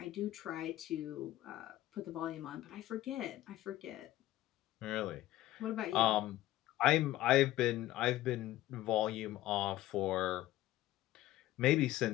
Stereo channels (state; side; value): quieter; right; 15.4 dB